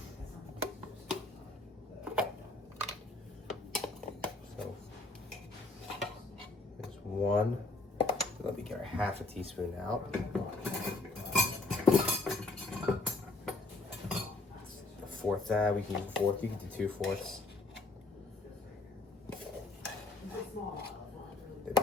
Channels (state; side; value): quieter; right; 3.3 dB